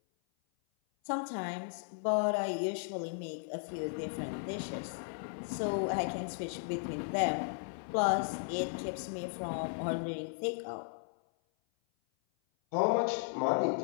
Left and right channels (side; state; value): right; silent; 54 dB below the other